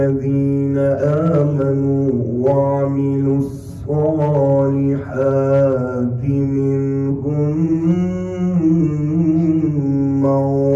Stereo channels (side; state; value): both; identical; correlation 1.00